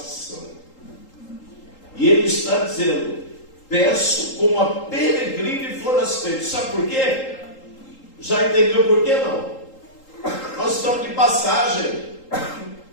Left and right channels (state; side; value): late; right; 3.8 ms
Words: E ele está dizendo: peço como a peregrino e forasteiro. Sabe por quê? Já entendeu por quê não? Nós estamos de passagem.